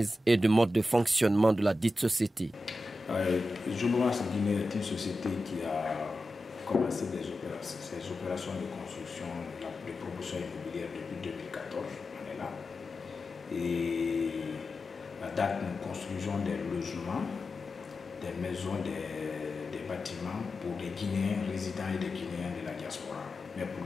et du mode de fonctionnement de la dite société. Jobomax Guinée est une société qui a commencé ses opérations de construction, de promotion immobilière depuis 2014, on est là. Et à date, nous construisons des logements, des maisons, des bâtiments pour des Guinéens résidents et des Guinéens de la diaspora. Mais pour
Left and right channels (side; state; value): both; normal; correlation 0.92